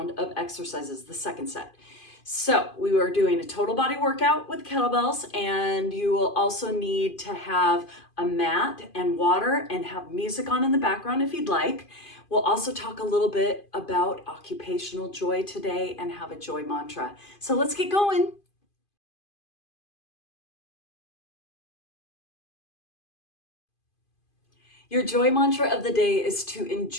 of exercises, the second set. So we are doing a total body workout with kettlebells, and you will also need to have a mat and water and have music on in the background if you'd like. We'll also talk a little bit about occupational joy today and have a joy mantra. So let's get going. Your joy mantra of the day is to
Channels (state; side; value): late; right; 2.5 ms